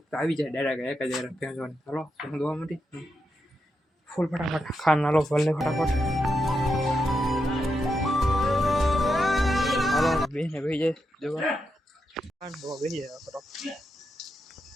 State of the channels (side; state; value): both; normal; correlation 0.85